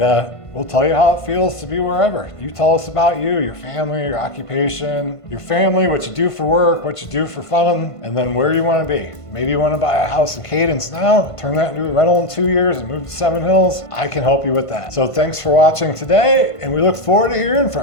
we'll tell you how it feels to be wherever. You tell us about you, your family, your occupation, your family, what you do for work, what you do for fun, and then where you want to be. Maybe you want to buy a house in Cadence now, turn that into a rental in 2 years and move to Seven Hills. I can help you with that. So thanks for watching today, and we look forward to hearing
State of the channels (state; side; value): late; right; 1.5 ms